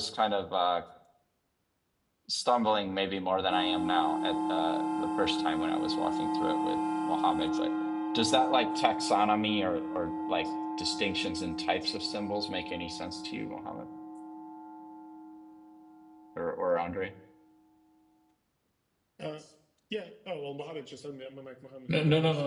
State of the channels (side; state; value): both; identical; correlation 1.00